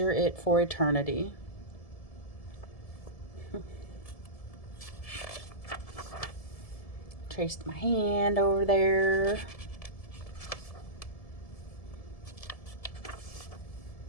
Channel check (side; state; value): right; late; 1.7 ms